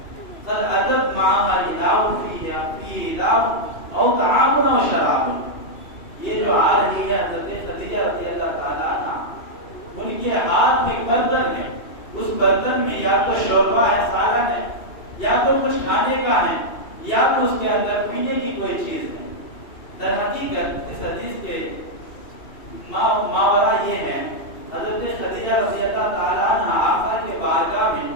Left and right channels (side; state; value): right; late; 2.7 ms